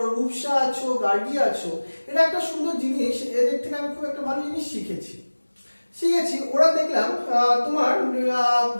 রূপসা আছো, গার্গী আছো। এটা একটা সুন্দর জিনিস, এদের থেকে আমি খুব একটা ভালো জিনিস শিখেছি। ওরা দেখলাম তোমার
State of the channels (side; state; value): both; inverted; correlation -1.00